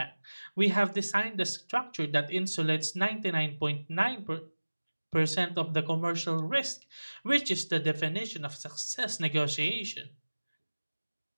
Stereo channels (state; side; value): inverted; both; correlation -1.00